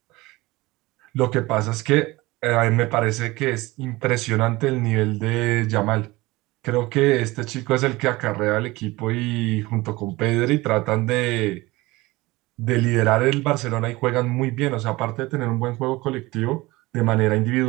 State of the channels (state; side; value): quieter; left; 20.8 dB